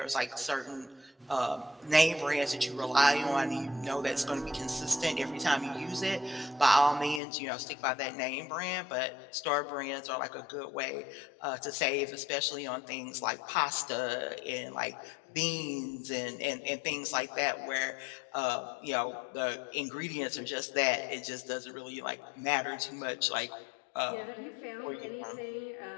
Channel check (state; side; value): drops out; right; at 7.2 s